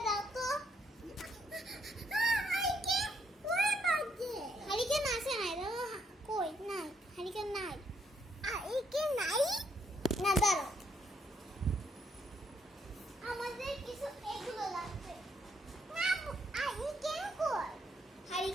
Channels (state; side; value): normal; both; correlation 0.73